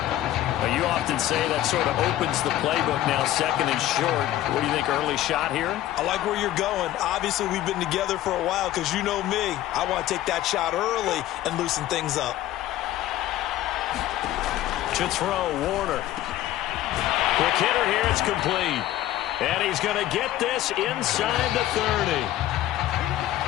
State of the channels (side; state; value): right; quieter; 13.9 dB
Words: Now, you often say that sort of opens the playbook now, 2nd and short. What do you think, early shot here? I like where you're going. Obviously, we've been together for a while because you know me. I want to take that shot early and loosen things up. To throw, Warner. Quick hitter here, it's complete. And he's going to get this inside the 30.